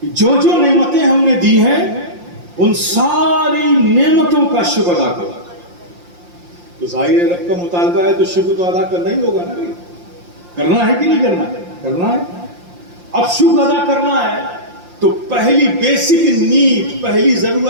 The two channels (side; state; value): left; late; 5.7 ms